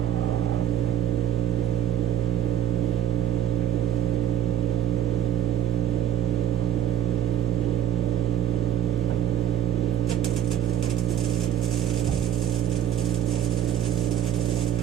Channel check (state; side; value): quieter; left; 9.5 dB